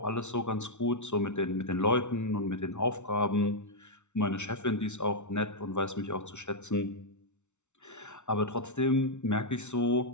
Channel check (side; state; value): right; late; 0.83 ms